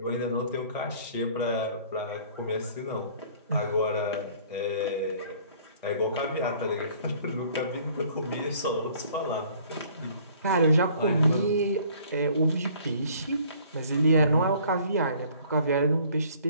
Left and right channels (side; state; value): both; inverted; correlation -0.55